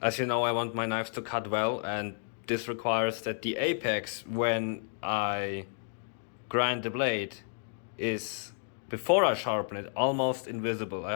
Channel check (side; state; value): right; silent; 57 dB below the other